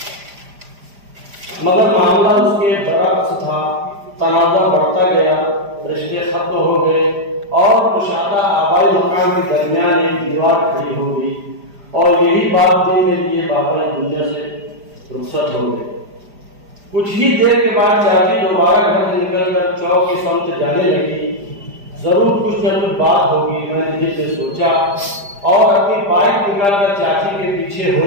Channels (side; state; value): left; late; 5.0 ms